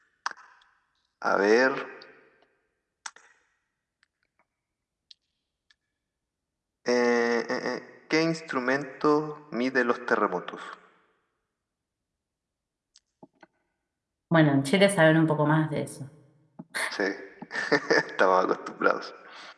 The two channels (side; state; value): both; identical; correlation 1.00